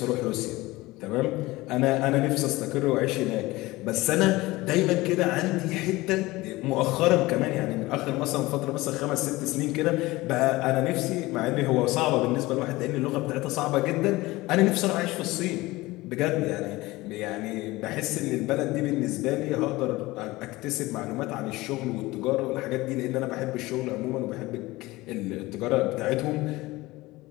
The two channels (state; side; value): quieter; right; 19.9 dB